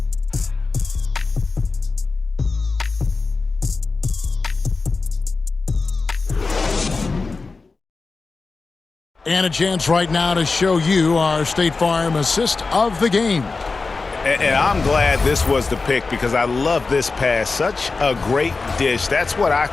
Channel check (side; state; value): right; quieter; 4.1 dB